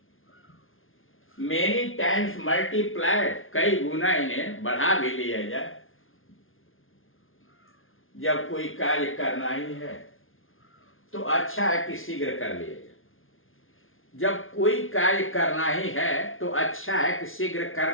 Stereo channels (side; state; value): right; late; 0.59 ms